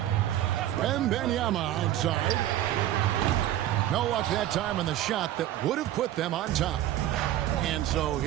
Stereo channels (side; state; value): left; quieter; 12.9 dB